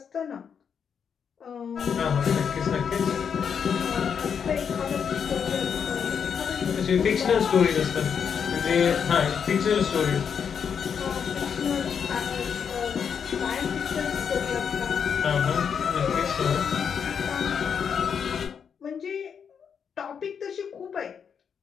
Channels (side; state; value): right; quieter; 7.1 dB